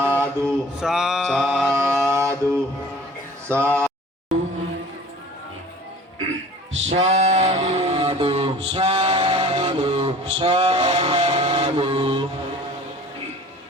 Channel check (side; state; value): both; normal; correlation 0.45